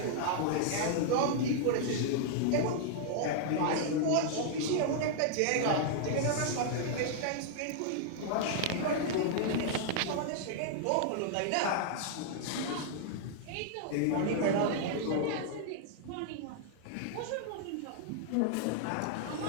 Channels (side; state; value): both; different; correlation -0.01